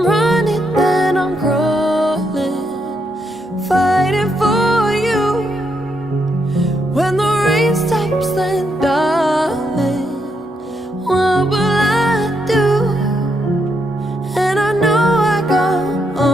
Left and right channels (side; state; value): both; normal; correlation 0.79